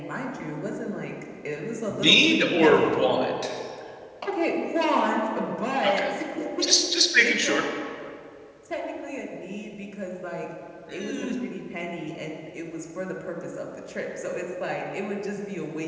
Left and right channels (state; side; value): identical; both; correlation 1.00